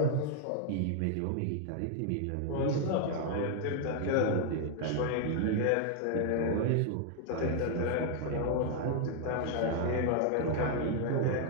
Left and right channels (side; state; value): both; different; correlation 0.00